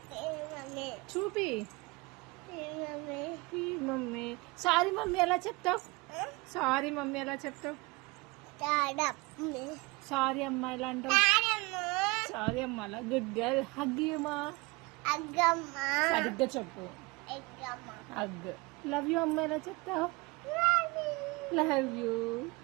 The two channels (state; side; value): quieter; left; 24.9 dB